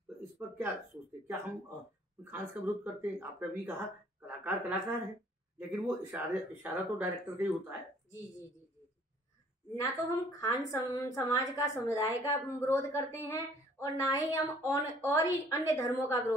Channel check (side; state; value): both; normal; correlation 0.58